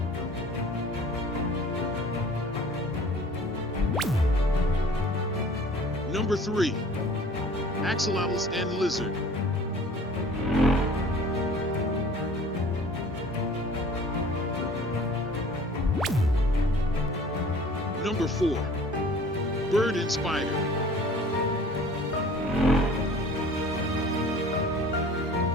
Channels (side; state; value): both; normal; correlation 0.48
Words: Number 3, axolotls and lizard. Number 4, bird and spider.